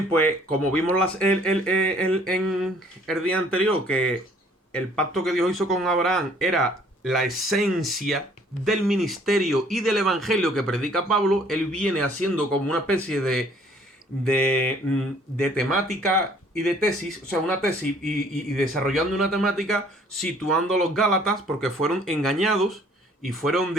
pues como vimos en el día anterior, que el pacto que Dios hizo con Abraham era la esencia del ministerio y del evangelio que predica Pablo, él viene haciendo como una especie de temática y de tesis, o sea, una tesis y desarrollando una temática, situando a los Gálatas, porque fueron engañados y fueron,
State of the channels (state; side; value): normal; both; correlation 0.58